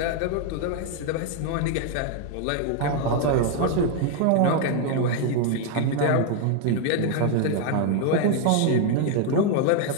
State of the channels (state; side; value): different; both; correlation 0.00